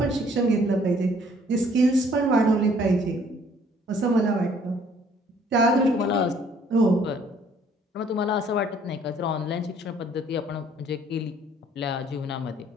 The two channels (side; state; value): both; normal; correlation 0.60